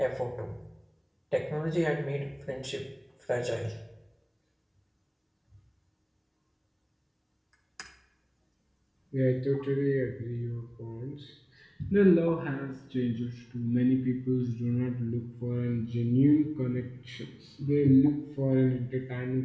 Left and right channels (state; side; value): identical; both; correlation 1.00